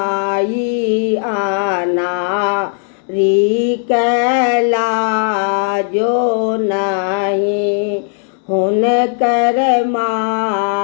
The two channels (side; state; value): right; silent; 67 dB below the other